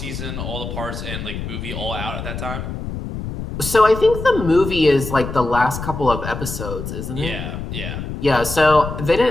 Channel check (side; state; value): left; noise; rumble, 7 dB below the sound